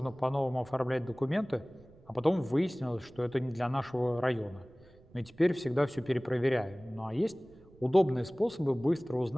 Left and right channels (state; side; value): noise; right; rumble, 26 dB below the sound